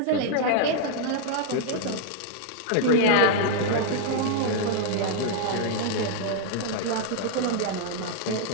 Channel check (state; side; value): different; both; correlation 0.00